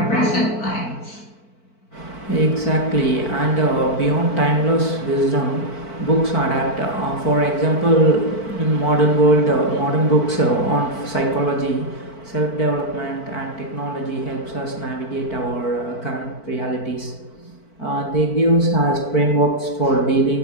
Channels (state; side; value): late; right; 4.5 ms